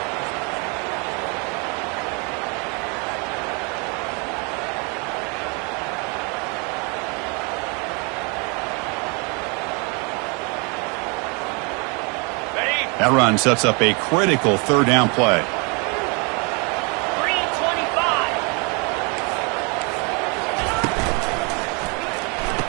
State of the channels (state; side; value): quieter; left; 32.4 dB